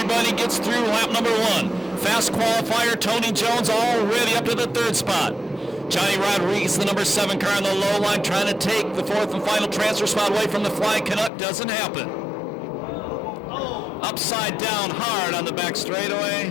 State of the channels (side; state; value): right; drops out; at 11.3 s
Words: gets through lap number 1. Fast qualifier, Tony Jones already up to the third spot. Johnny Rodriguez, the number 7 car on the low line, trying to take the fourth and final transfer spot away from the Flying Canuck. Doesn't happen. Upside down hard on the back